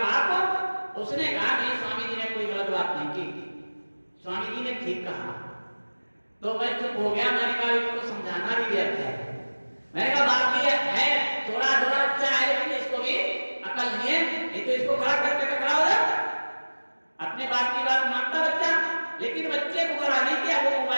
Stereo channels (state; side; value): inverted; both; correlation -1.00